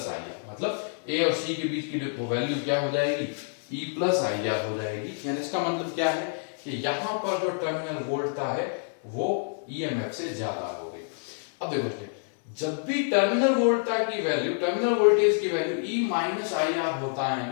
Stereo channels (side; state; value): right; silent; 60 dB below the other